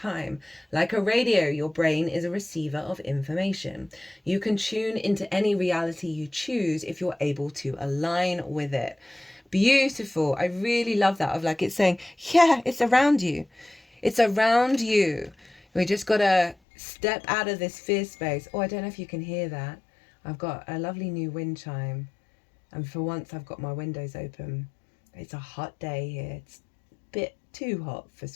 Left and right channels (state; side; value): drops out; right; at 16.6 s